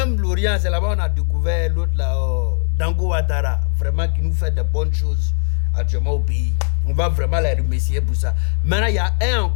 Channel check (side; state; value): right; silent; digital silence